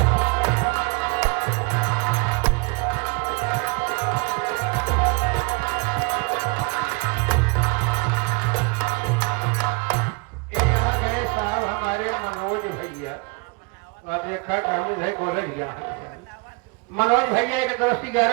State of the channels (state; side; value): quieter; left; 30.4 dB